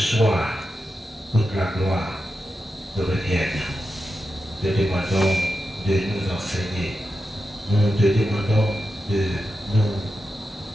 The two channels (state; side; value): normal; both; correlation 0.89